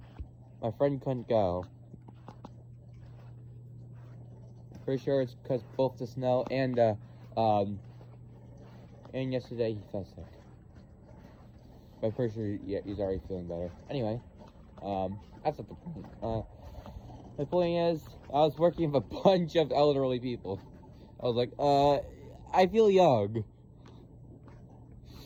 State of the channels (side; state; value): both; identical; correlation 1.00